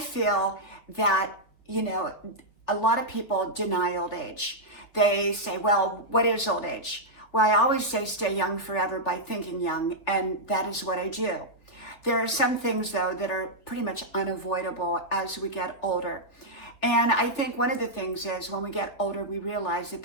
that, a lot of people deny old age. They say, well, what is old age? Well, I always say stay young forever by thinking young, and that is what I do. There are some things, though, that are pretty much unavoidable as we get older. And I think one of the things is when we get older, we realize that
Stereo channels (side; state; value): right; late; 3.4 ms